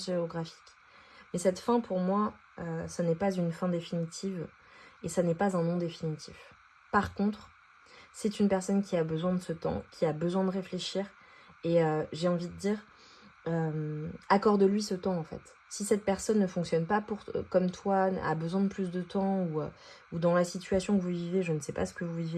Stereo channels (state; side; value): identical; both; correlation 1.00